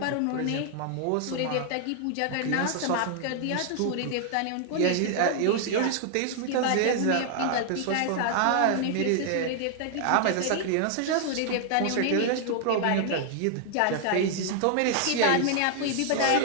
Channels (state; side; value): different; both; correlation 0.00